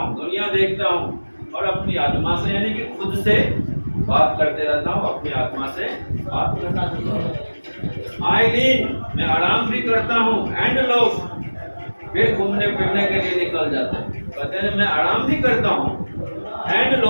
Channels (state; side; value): inverted; both; correlation -1.00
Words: दुनिया देखता हूँ और अपनी आत्मा से, यानी कि खुद से बात करते रहता हूँ, अपनी आत्मा से बात करता हूँ। आई लीन, मैं आराम भी करता हूँ, एंड लव, फिर घूमने फिरने के लिए निकल जाते हैं। कहते हैं मैं आराम भी करता हूँ, एंड